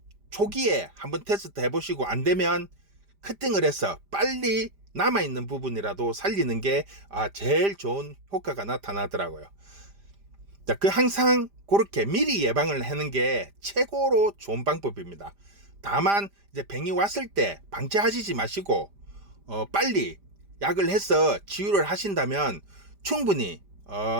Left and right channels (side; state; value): left; late; 5.0 ms